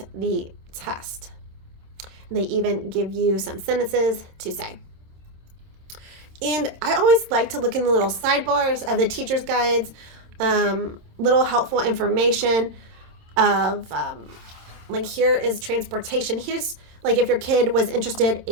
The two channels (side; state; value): left; late; 27 ms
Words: the test. They even give you some sentences to say. And I always like to look in the little sidebars of the teacher's guides little helpful information of like here is transportation. Here's like if your kid was interested